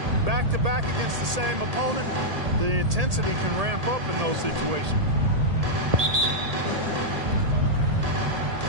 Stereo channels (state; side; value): late; left; 1.8 ms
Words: back-to-back against the same opponent, the intensity can ramp up in those situations.